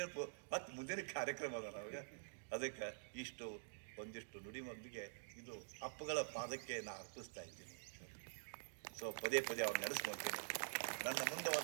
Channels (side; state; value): left; silent; digital silence